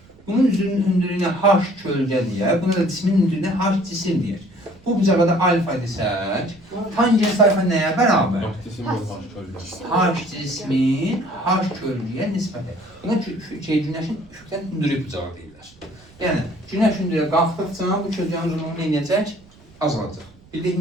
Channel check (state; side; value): noise; right; rumble, 26 dB below the sound